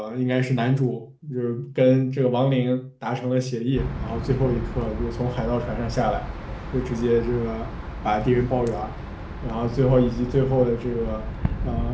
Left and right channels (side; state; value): both; identical; correlation 1.00